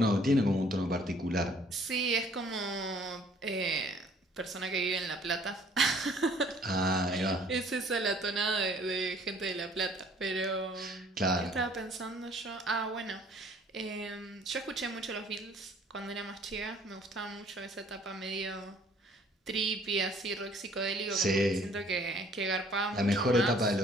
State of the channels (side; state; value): both; normal; correlation 0.57